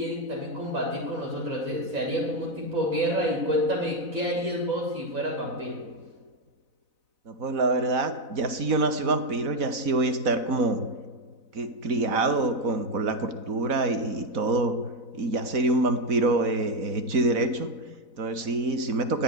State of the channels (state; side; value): late; left; 4.0 ms